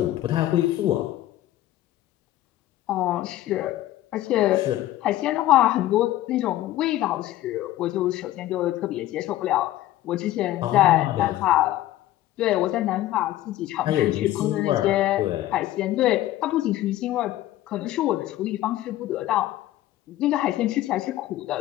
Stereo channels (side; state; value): right; quieter; 14.6 dB